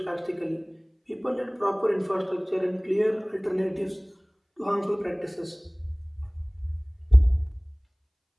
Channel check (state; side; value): identical; both; correlation 1.00